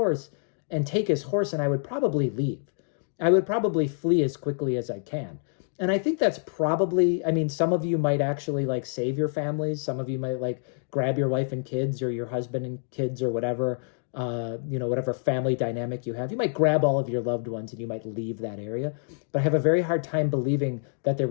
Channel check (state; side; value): silent; right; digital silence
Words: and take his horse, and I would probably leave. I would probably flee as quickly as I can. And I think that's probably, some of you might actually save your families. Some of you might grab your wife and kids or your husband and kids or whatever, whatever family dynamic you have. You might grab all of your loved ones and you might leave that area. But I have a very hard time believing that there